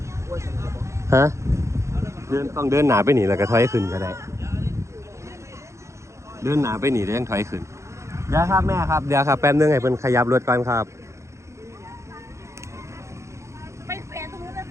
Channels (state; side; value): late; left; 0.14 ms